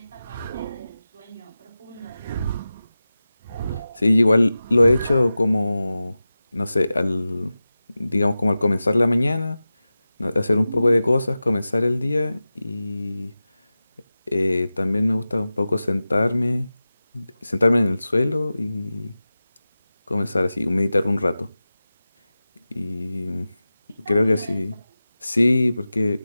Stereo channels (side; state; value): both; inverted; correlation -0.95